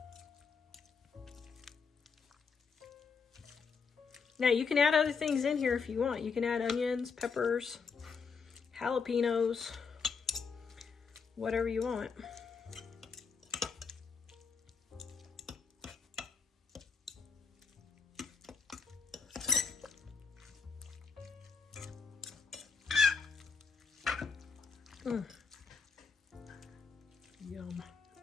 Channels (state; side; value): quieter; right; 5.5 dB